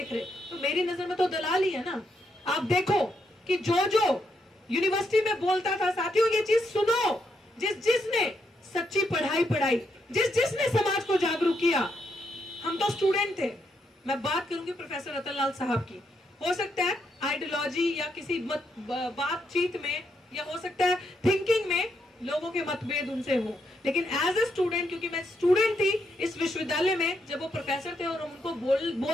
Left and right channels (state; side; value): normal; both; correlation 0.79